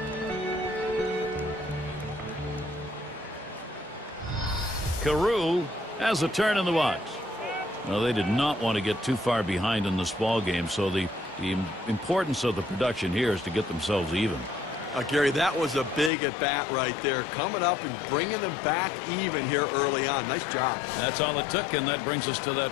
Carew has a turn in the box. Well, they did not want to get too far behind in this ball game, so the importance of the production here is to get themselves even. Gary, that was a big at-bat right there, coming up and bringing them back even here early on. Nice job. That's all it took, and that brings us to that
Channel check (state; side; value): drops out; right; at 16.1 s